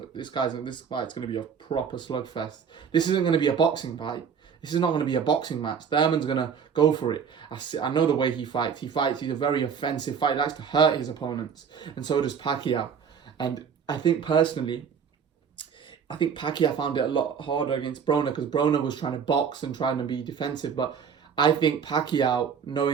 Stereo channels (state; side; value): quieter; left; 7.0 dB